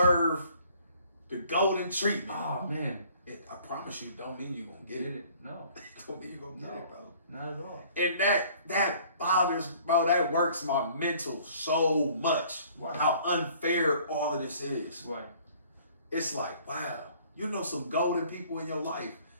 the golden treatment. Oh, man. I promise you, don't mean you're going to get it. No. Don't mean you're going to get it, bro. Not at all. And that bothers, bro, that works my mental so much. Right. How unfair all of this is. Right. It's like, wow, you know some golden people in your life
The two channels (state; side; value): inverted; both; correlation -0.55